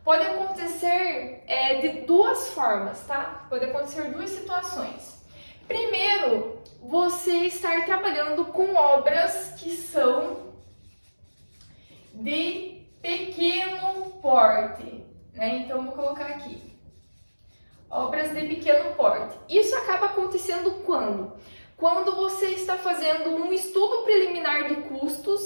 pode acontecer de duas formas, tá? Pode acontecer duas situações. Primeiro, você estar trabalhando com obras que são de pequeno porte, né? Então, vou colocar aqui. Obras de pequeno porte. Isso acaba acontecendo quando? Quando você está fazendo um estudo preliminar de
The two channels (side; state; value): both; inverted; correlation -1.00